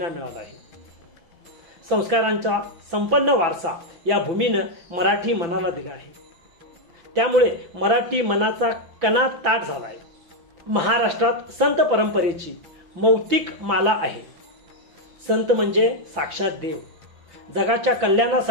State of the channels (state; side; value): late; left; 6.0 ms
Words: मिळाला आहे। संस्कारांचा संपन्न वारसा या भूमीनं मराठी मनाला दिला आहे। त्यामुळे मराठी मनाचा कणा ताट झाला आहे। महाराष्ट्रात संत परंपरेची मौतिक माला आहे। संत म्हणजे साक्षात देव। जगाच्या